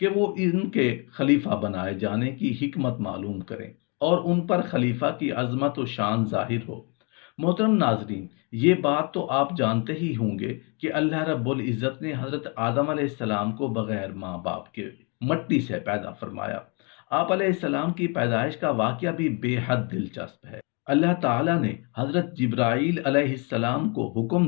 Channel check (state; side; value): quieter; right; 33.6 dB